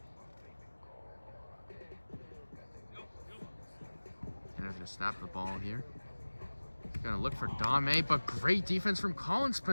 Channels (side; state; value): both; inverted; correlation -1.00